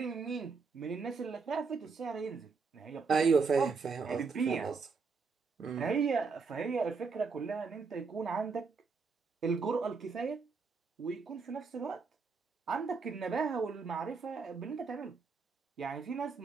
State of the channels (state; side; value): quieter; left; 4.9 dB